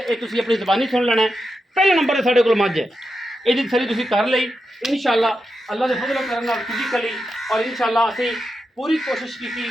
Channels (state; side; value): normal; both; correlation 0.88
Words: ये तुसीं अपनी ज़बानी सुन लेना है। पहले नंबर ते साडे कोल मझ है, इहदी तसल्ली तुसीं कर लई इंशाअल्लाह अल्लाह दे फजलो करम नाल फिजिकली और इंशाअल्लाह असीं पूरी कोशिश की